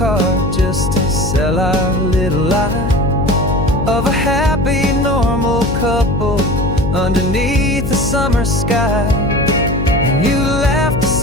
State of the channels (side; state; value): left; noise; hum, 3 dB below the sound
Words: just to sell our little lie of a happy, normal couple underneath the summer sky. And you laughed a